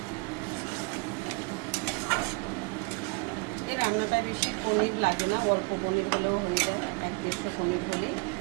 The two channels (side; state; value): left; quieter; 29.5 dB